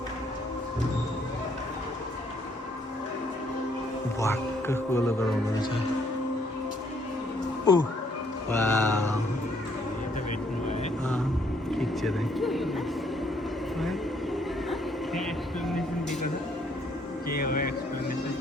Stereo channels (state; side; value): normal; both; correlation 0.67